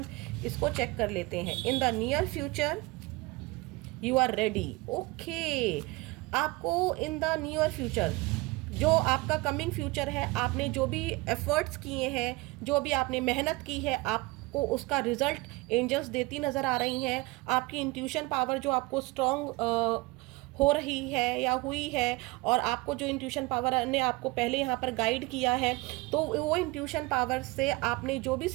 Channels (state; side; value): quieter; left; 22.7 dB